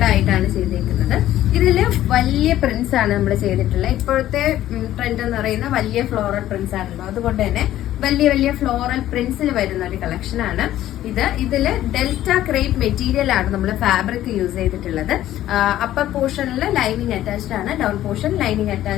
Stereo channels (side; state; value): right; quieter; 13.3 dB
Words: ആയിട്ടാണ് ചെയ്തിരിക്കുന്നത്. ഇതില് വലിയ പ്രിന്റ്സ് ആണ് നമ്മൾ ചെയ്തിട്ടുള്ളത്. ഇപ്പോഴത്തെ ട്രെൻഡ് എന്ന് പറയുന്ന വലിയ ഫ്ലോറൽ പ്രിന്റ്സ് ആണല്ലോ, അതുകൊണ്ട് തന്നെ വലിയ വലിയ ഫ്ലോറൽ പ്രിന്റ്സിൽ വരുന്ന ഒരു കളക്ഷൻ ആണ് ഇത്. ഇതില് ഡെൽറ്റ ക്രേപ്പ് മെറ്റീരിയൽ ആണ് നമ്മൾ ഫാബ്രിക് യൂസ് ചെയ്തിട്ടുള്ളത്. അപ്പർ പോർഷനിൽ ലൈനിങ് അറ്റാച്ച്ഡ് ആണ്, ഡൗൺ പോർഷൻ ലൈനിങ്